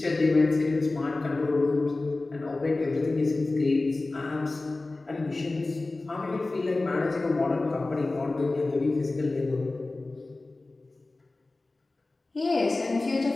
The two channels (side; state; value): right; quieter; 3.2 dB